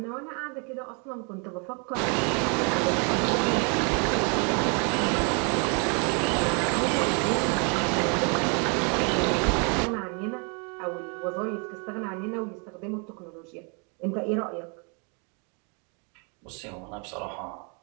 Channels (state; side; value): quieter; left; 35.8 dB